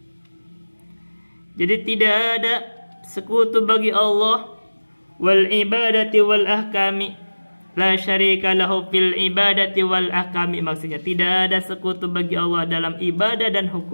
Jadi tidak ada sekutu bagi Allah. Wal ibadati wal ahkami. La syarika lahu fil ibadati wal ahkami. Maksudnya tidak ada sekutu bagi Allah dalam ibadah dan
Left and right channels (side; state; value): both; inverted; correlation -1.00